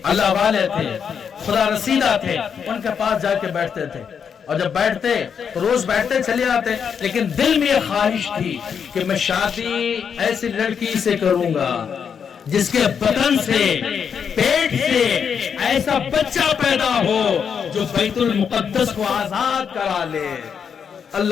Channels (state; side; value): quieter; right; 7.1 dB